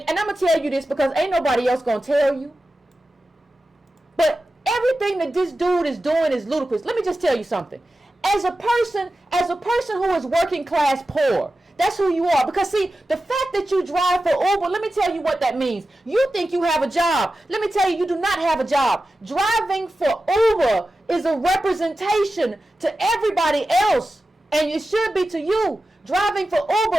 I'm gonna tell you this because ain't nobody else gonna tell you. But everything that this dude is doing is ludicrous. Let me just tell you something. As a person who is working class poor, that's who you are. Because see, the fact that you drive for Uber, let me tell you what that means. You think you have a job. Let me tell you, you do not have a job. Driving for Uber is a representation to everybody else, and it should be to you. Driving for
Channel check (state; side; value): normal; both; correlation 0.93